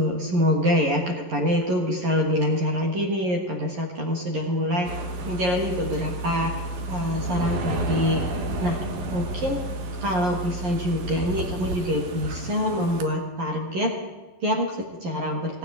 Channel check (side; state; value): left; late; 12 ms